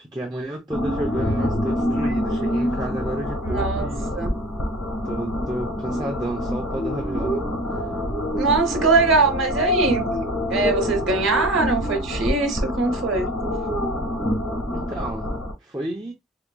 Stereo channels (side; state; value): both; normal; correlation 0.39